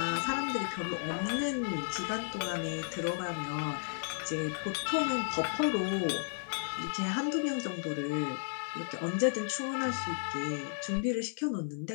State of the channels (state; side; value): silent; right; 55 dB below the other